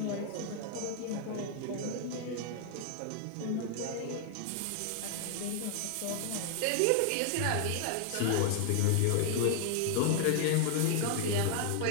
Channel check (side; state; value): both; different; correlation 0.00